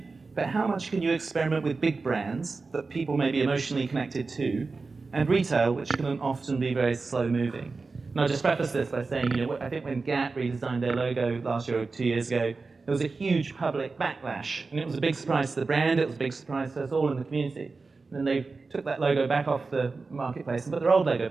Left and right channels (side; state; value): left; quieter; 4.1 dB